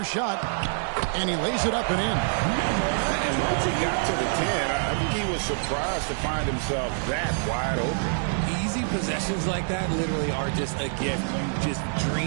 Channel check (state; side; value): silent; left; digital silence